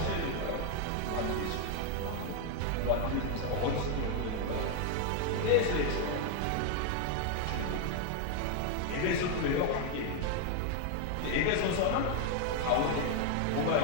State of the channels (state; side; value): different; both; correlation 0.00